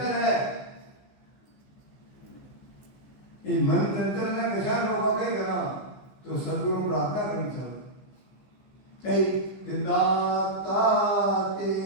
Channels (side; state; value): right; late; 15 ms